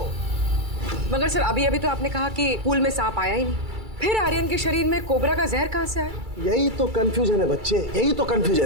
मगर सर अभी तो आपने कहा कि पूल में सांप आया ही नहीं, फिर आर्यन के शरीर में कोबरा का जहर कहाँ से आया? यही तो कंफ्यूजन है बच्चे, यही तो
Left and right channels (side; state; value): left; late; 2.3 ms